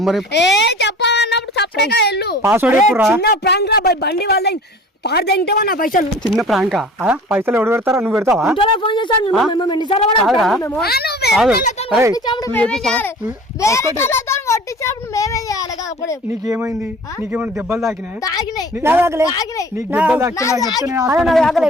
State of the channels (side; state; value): both; normal; correlation 0.44